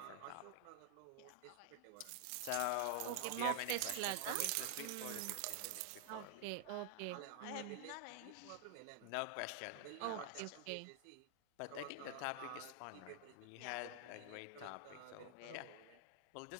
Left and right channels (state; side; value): different; both; correlation 0.00